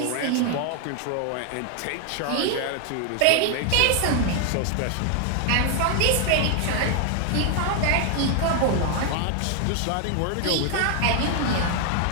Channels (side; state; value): both; different; correlation 0.00